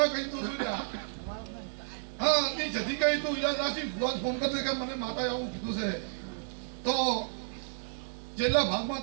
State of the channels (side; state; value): left; silent; digital silence